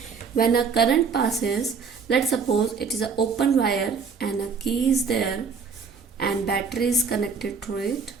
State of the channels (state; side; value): quieter; left; 5.5 dB